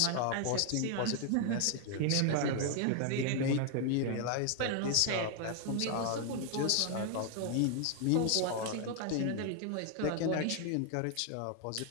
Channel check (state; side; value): different; both; correlation 0.00